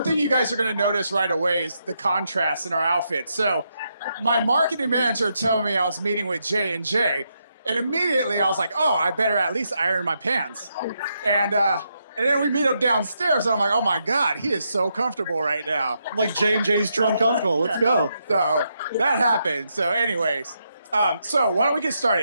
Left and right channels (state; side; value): inverted; both; correlation -0.81